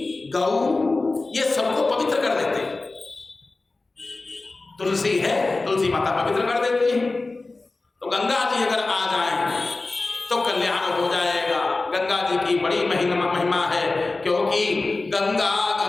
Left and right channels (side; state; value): right; quieter; 3.4 dB